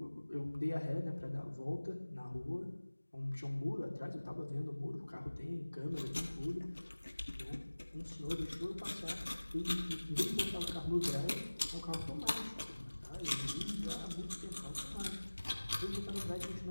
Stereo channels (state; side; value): inverted; both; correlation -1.00